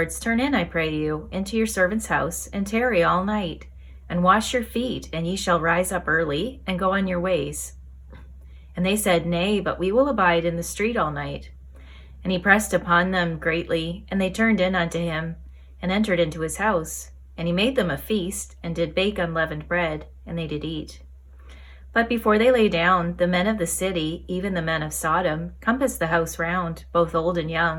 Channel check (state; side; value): identical; both; correlation 1.00